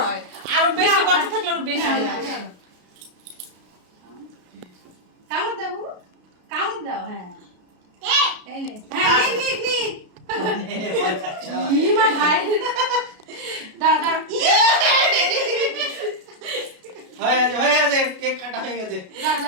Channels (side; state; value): left; late; 33 ms